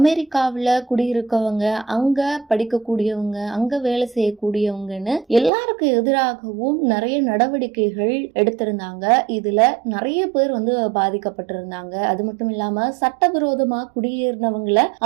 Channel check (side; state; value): left; drops out; at 5.5 s